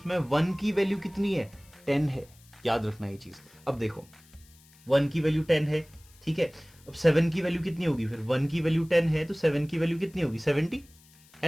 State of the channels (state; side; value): noise; left; hiss, 27 dB below the sound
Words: 1 की वैल्यू कितनी है? 10 है. याद रखना ये चीज. अब देखो, 1 की वैल्यू 10 है, ठीक है। अब 7 की वैल्यू कितनी होगी फिर, 1 की वैल्यू 10 है तो 7 की वैल्यू कितनी होगी 70, है